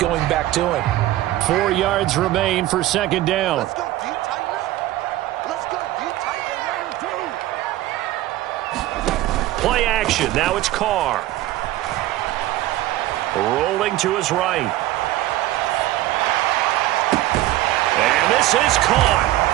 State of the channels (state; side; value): quieter; left; 15.6 dB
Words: back to him. 4 yards remain for 2nd down. Let's go, D, tighten up. Let's go, D, tighten up. Play action. Now it's Carr. Rolling to his right. And this is caught.